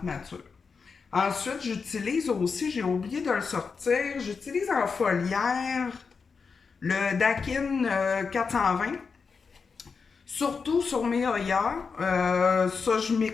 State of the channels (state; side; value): quieter; right; 5.3 dB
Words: matures. Ensuite, j'utilise aussi, j'ai oublié de le sortir, j'utilise en foliaire le Dakin 420. Surtout sur mes Hoya. Ça, je